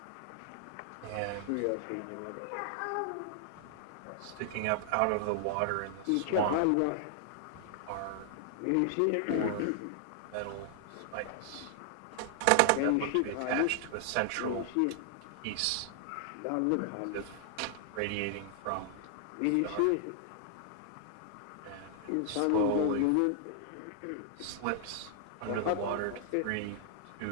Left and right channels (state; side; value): different; both; correlation 0.00